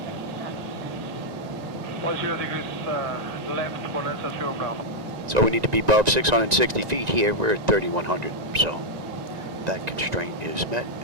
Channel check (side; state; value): left; late; 1.9 ms